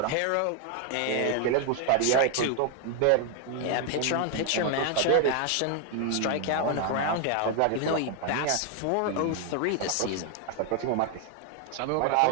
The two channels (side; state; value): both; different; correlation 0.00